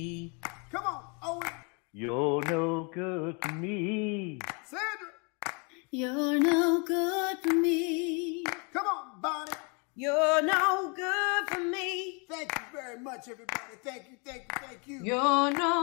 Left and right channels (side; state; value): right; quieter; 34.4 dB